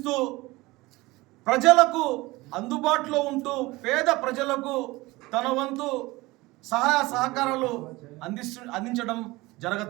ప్రజలకు అందుబాటులో ఉంటూ పేద ప్రజలకు తన వంతు సహాయ సహకారాలు అందించడం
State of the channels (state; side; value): quieter; left; 20.9 dB